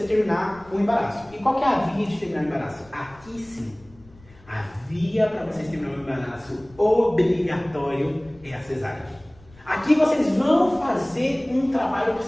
terminar o embaraço. E qual que é a via de terminar o embaraço? Aqui sim. A via para vocês terminar o embaraço obrigatório é a cesárea. Aqui vocês vão fazer um trabalho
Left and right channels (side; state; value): left; noise; rumble, 26 dB below the sound